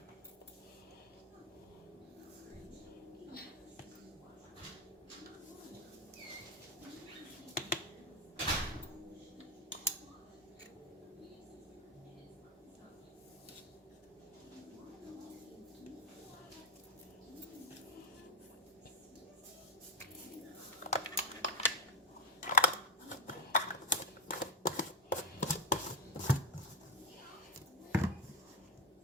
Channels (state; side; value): normal; both; correlation 0.06